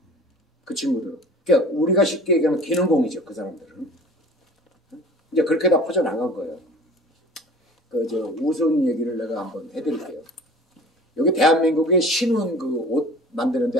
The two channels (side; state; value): both; normal; correlation 0.43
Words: 그 친구들은. 그러니까 우리가 쉽게 얘기하면 기능공이죠. 그 사람들은. 이제 그렇게 다 퍼져나간 거예요. 우스운 얘기를 내가 한번 해드릴게요. 여기 대한민국의 신원 옷 만드는 데